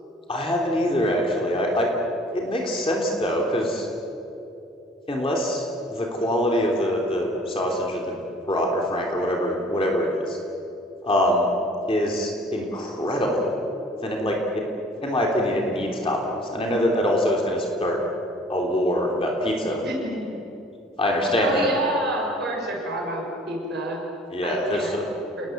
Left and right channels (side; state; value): both; normal; correlation 0.52